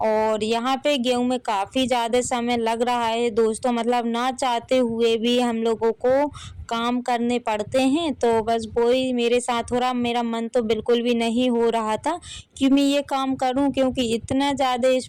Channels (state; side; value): identical; both; correlation 1.00